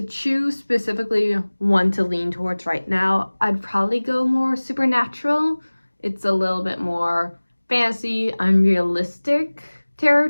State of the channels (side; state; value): both; inverted; correlation -1.00